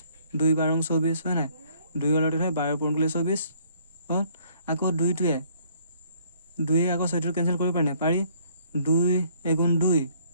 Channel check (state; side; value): inverted; both; correlation -0.62